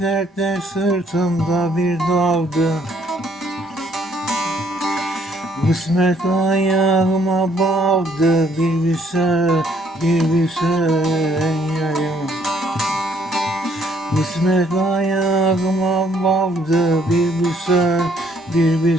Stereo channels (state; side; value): normal; both; correlation 0.66